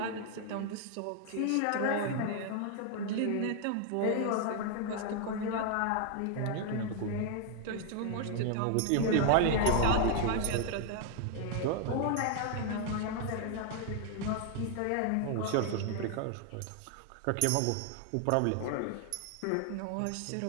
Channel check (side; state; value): both; different; correlation 0.00